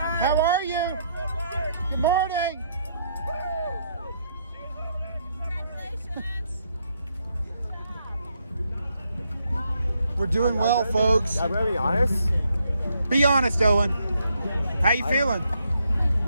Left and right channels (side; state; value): both; inverted; correlation -0.75